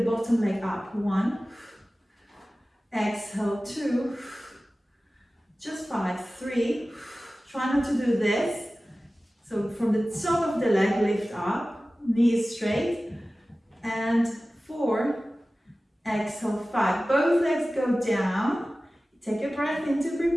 bottom leg up. 1. Exhale, 2. Just 5. 3. Try not to do this. So from the top of the leg, lift up. Knees straight. And 4. Exhale, 5. Both legs go down. Take a breath in to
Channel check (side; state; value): both; normal; correlation 0.96